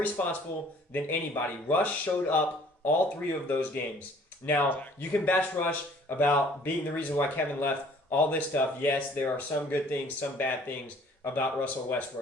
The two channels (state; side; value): normal; both; correlation 0.55